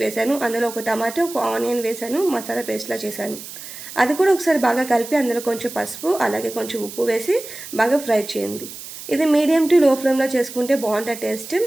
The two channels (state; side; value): noise; right; hiss, 13 dB below the sound